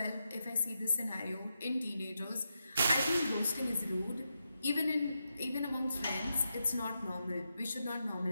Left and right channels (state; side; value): inverted; both; correlation -0.87